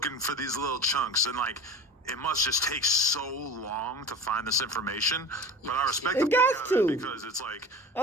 for these little chunks. And like, it must just take so long to find this information. But I respect It them got for it to. because it's like,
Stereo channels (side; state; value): both; normal; correlation 0.34